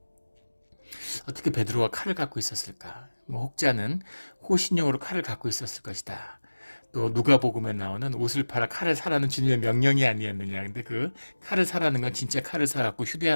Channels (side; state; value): both; inverted; correlation -1.00